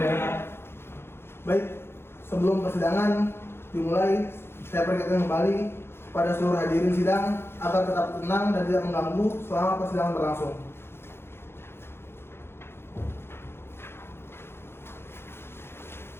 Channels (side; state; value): right; late; 0.12 ms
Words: Baik, sebelum persidangan dimulai, saya peringatkan kembali pada seluruh hadirin sidang agar tetap tenang dan tidak mengganggu selama persidangan berlangsung.